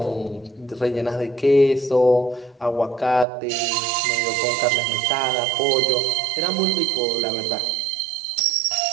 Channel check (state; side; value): drops out; left; at 3.2 s